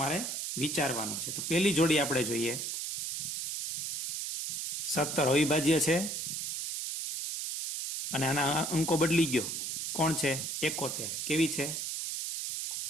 વિચારવાનું છે. તો પહેલી જોડી આપણે જોઈએ. 17 અવિભાજ્ય છે અને આના અંકો બદલી ગયો. કોણ છે? 71. કેવી છે?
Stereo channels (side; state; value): right; noise; hiss, 3 dB below the sound